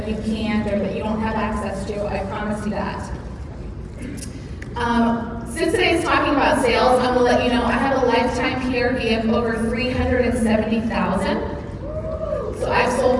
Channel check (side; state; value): both; identical; correlation 1.00